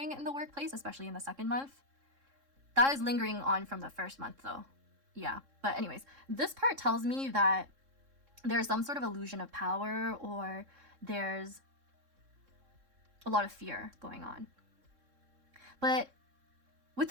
in the workplace, especially in the second month. That is lingering on from the first month though. Yeah, but anyways, this part tells me that there's some sort of illusion of power, or there's a lot of fear going on. But with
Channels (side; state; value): left; late; 3.7 ms